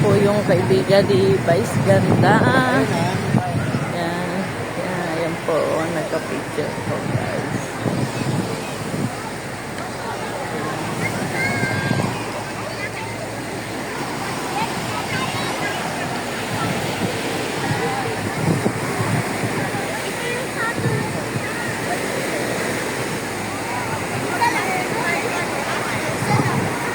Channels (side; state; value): right; noise; hum, 21 dB below the sound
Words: po yung kaibigan ni Vice Ganda. Ayan. Ayan po. Nagka-picture po guys.